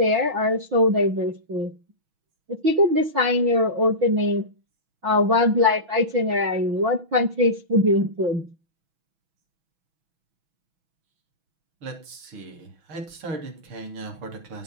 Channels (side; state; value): left; late; 6.2 ms